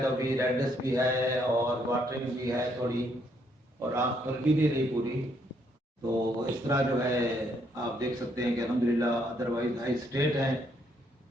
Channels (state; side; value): normal; both; correlation 0.72